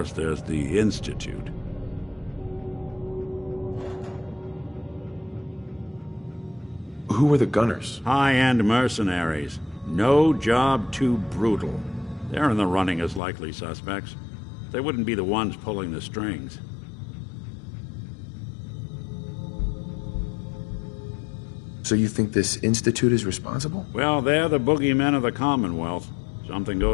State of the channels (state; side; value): drops out; right; at 13.2 s